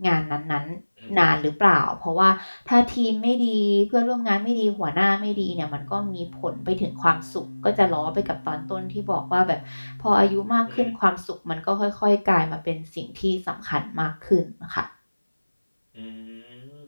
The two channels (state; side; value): inverted; both; correlation -1.00